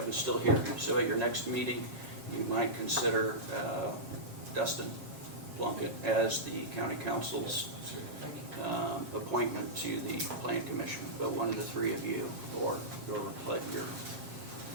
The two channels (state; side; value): late; left; 7.5 ms